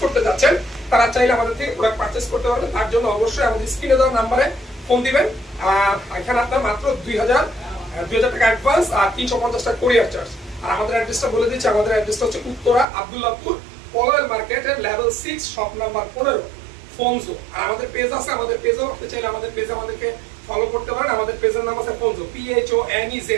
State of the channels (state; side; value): drops out; left; at 12.9 s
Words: করতে যাচ্ছেন তারা চাইলে আমাদের থেকে প্রোডাক্ট পারচেস করতে পারবেন। তার জন্য অবশ্যই আমাদের স্ক্রিনে দেওয়া নাম্বারে ফোন দিবেন। এখানে আপনার মাত্র 2000 টাকা অ্যাডভান্স আর 350 টাকা কোরিয়ার চার্জ। আর আমাদের অ্যাড্রেসটা বলে দিচ্ছি, আমাদের অ্যাড্রেসটা হচ্ছে উত্তরা আব্দুল্লাহপুর পলয়ের মার্কেটের লেভেল 6 শপ নাম্বার 15 ফোনজো। আর আমাদের পেজ আছে, আমাদের পেজও আপনি চাইলে আমাদের পেজে আমাদেরকে ফলো করতে পারেন। আমাদের পেজের নাম আছে ফোনজো,